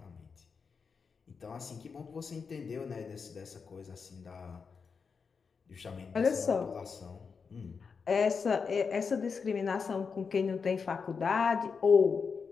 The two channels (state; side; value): quieter; right; 5.5 dB